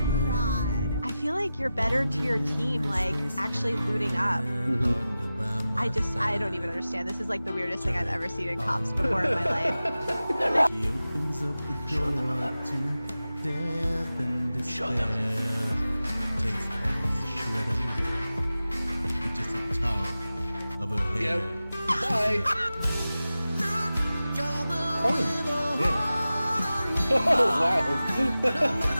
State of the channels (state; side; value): inverted; both; correlation -0.94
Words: god. I feel like you're better to your team, like actually looting up. I don't even understand. This is like the weirdest thing I've ever seen in comps before in my life. She opens up the door to death and despair. Takes every shred of me, just the top of her hair. Bye. Oh, yeah. Oh, wow.